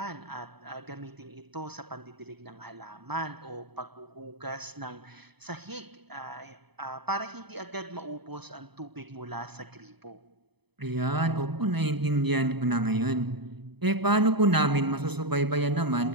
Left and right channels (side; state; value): left; late; 0.98 ms